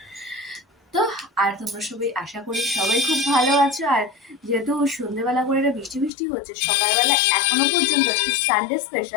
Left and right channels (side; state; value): right; drops out; at 6.1 s